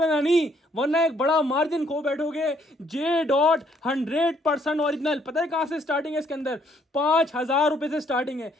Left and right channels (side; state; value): both; normal; correlation 0.67